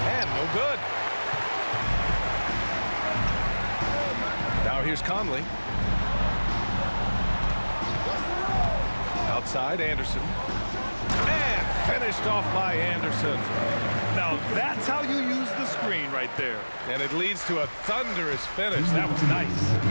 And no good. Now here's Conley. Outside, Anderson. And finished off by Anderson. Now that's how you use the screen right there. And it leads to a thunderous finish. That was nice.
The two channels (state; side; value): inverted; both; correlation -1.00